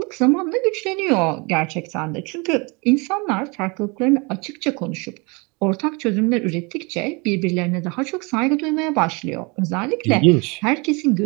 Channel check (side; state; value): left; quieter; 28.9 dB